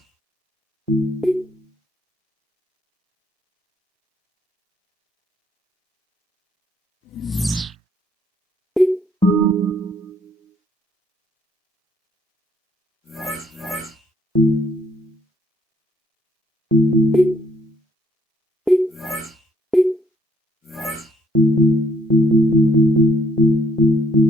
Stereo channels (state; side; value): normal; both; correlation 0.67